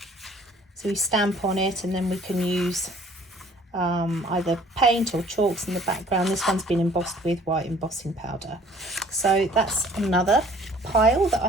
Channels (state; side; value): normal; both; correlation 0.55